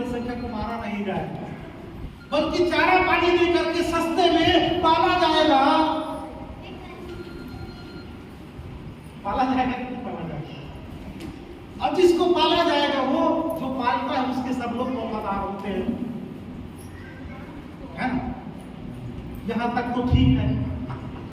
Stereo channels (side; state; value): both; identical; correlation 1.00